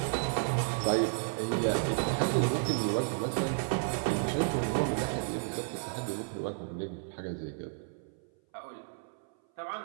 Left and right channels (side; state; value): left; silent; 56 dB below the other